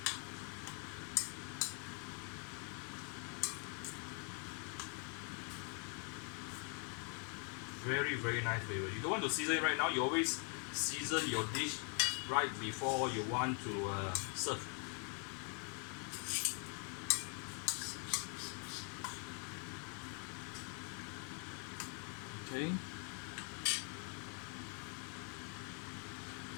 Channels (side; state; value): right; quieter; 38.6 dB